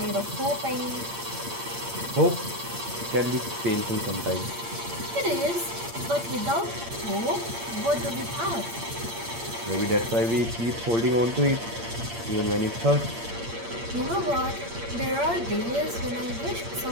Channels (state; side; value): late; left; 8.7 ms